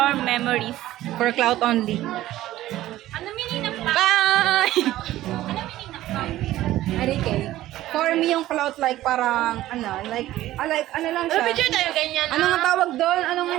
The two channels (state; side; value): quieter; left; 15.0 dB